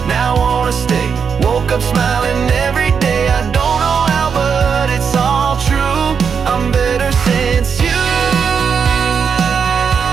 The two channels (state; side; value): quieter; left; 6.5 dB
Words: now I wanna stay. Woke up smiling every day. I don't know how, but it's all true. I'm better since you.